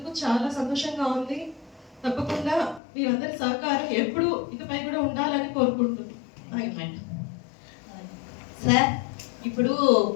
చాలా సంతోషంగా ఉంది. తప్పకుండా మీరందరి సహకారం ఎప్పుడు ఇకపై కూడా ఉండాలని కోరుకుంటున్నాను. సార్, ఇప్పుడు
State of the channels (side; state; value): right; drops out; at 2.8 s